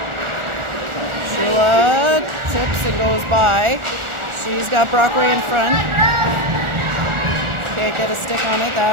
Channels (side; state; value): left; late; 1.4 ms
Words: Shula tips and goes by. She's got Brockway in front. Can't get a stick on it.